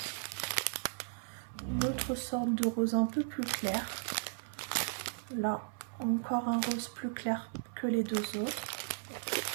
une autre sorte de rose un peu plus clair. Là, encore un rose plus clair que les deux autres.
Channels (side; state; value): left; silent; 54 dB below the other